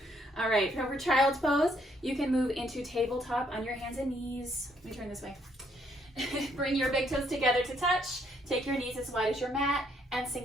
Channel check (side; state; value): both; normal; correlation 0.70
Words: right, for child's pose, you can move into tabletop on your hands and knees. Let me turn this way. Bring your big toes together to touch. Take your knees as wide as your mat and